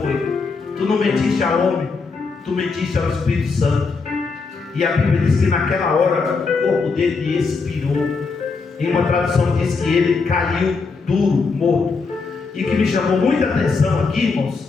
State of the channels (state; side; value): quieter; right; 4.5 dB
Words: tu não mentiste ao homem, tu mentiste ao Espírito Santo. E a Bíblia diz que naquela hora o corpo dele expirou. Em uma tradução diz que ele caiu duro, morto. E que me chamou muita atenção aqui,